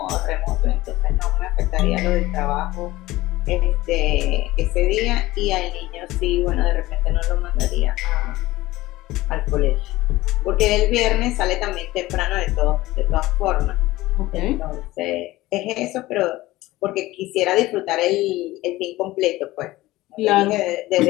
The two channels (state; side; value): quieter; right; 17.9 dB